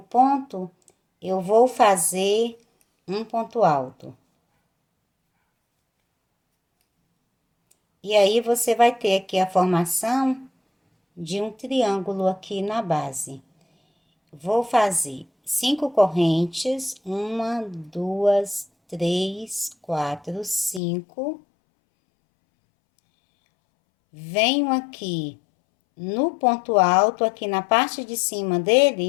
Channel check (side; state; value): right; drops out; at 20.8 s